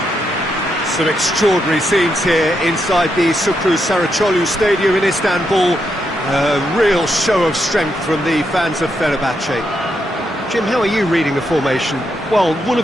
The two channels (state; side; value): normal; both; correlation 0.81